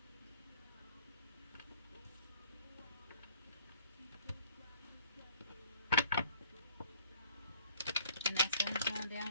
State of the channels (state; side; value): inverted; both; correlation -0.58